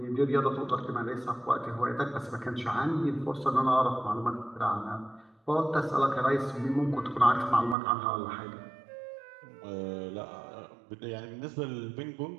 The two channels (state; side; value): drops out; left; at 7.8 s